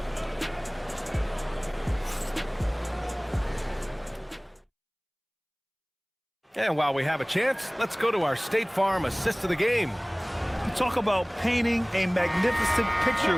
And while we have a chance, let's go to our State Farm assist of the game. Talk about painting a magnificent picture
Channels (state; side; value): identical; both; correlation 1.00